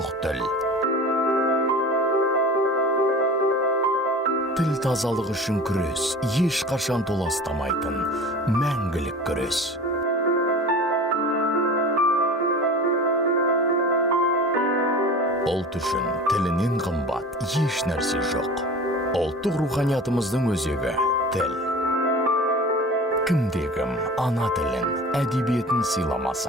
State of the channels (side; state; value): both; normal; correlation 0.37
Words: тіл. Тіл тазалығы үшін күрес, ешқашан толастамайтын, мәңгілік күрес. Ұлт үшін тілінен қымбат еш нәрсе жоқ. Ұлттық руханиятымыздың өзегі тіл. Кімде-кім ана тілін, әдебиетін